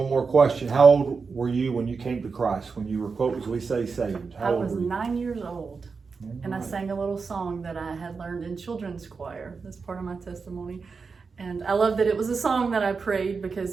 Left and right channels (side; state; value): left; quieter; 4.9 dB